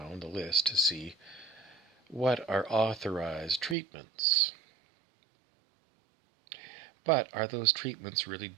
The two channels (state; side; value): drops out; left; at 3.8 s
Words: the list to see what are authorized treatments. But are those treatments really